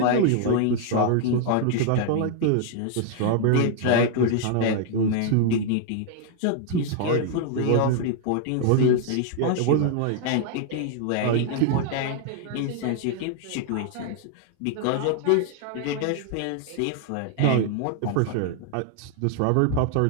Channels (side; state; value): both; different; correlation 0.00